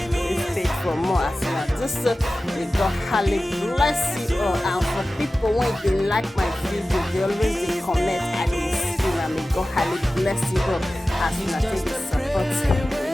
page for more as well. Just so may God highly bless you all, and for people when they like my video, they always dey comment and they see, and may God highly bless you all as you take the support.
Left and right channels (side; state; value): both; normal; correlation 0.95